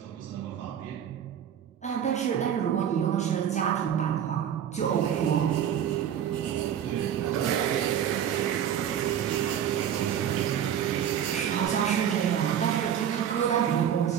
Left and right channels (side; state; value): left; quieter; 9.5 dB